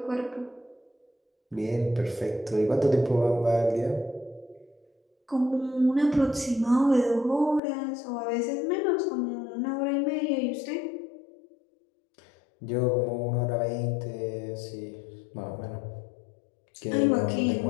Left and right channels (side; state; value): right; drops out; at 7.6 s